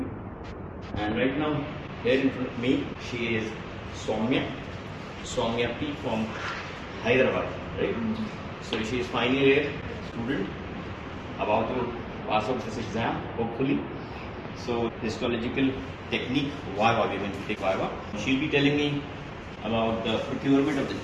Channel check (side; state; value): both; identical; correlation 1.00